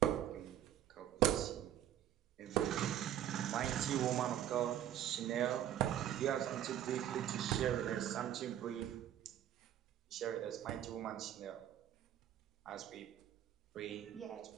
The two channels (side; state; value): left; quieter; 11.3 dB